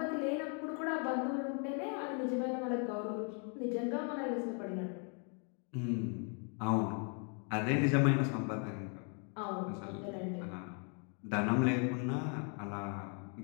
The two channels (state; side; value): quieter; right; 39.3 dB